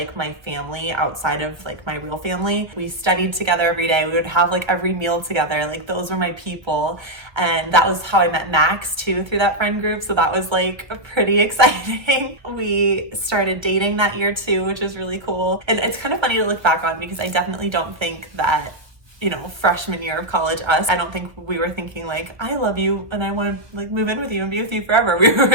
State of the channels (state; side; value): late; left; 1.0 ms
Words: my family outside of like my real family. We studied together every day. We would have like every meal together. Like those were my people. And that was how I met Max too, through that friend group. So that was like pretty exciting. We started dating that year too, which was really cool. And it's kind of funny to look back on because I definitely don't think that, you know, freshman year of college I don't think we were thinking like, I love you and I want to like move in with you and be with you forever. We